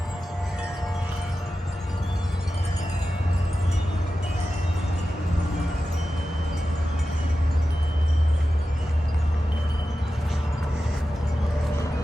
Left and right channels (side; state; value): both; normal; correlation 0.93